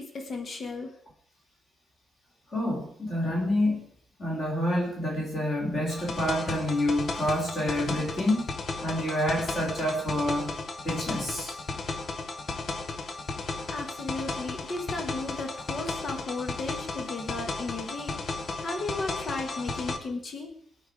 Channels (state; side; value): normal; both; correlation 0.80